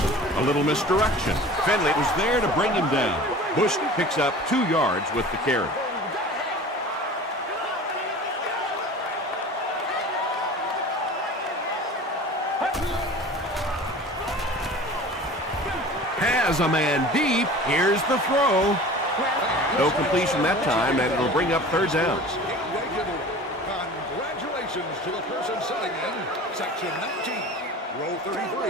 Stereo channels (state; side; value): normal; both; correlation 0.40